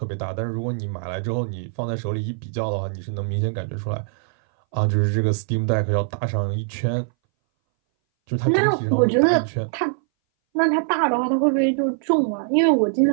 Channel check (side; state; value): left; silent; 61 dB below the other